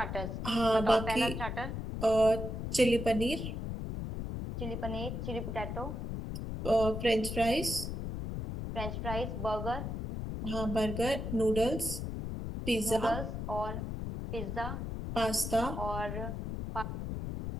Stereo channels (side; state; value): left; noise; rumble, 4 dB below the sound